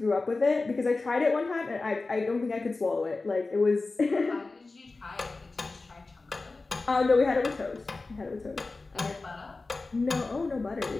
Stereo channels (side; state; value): right; quieter; 3.6 dB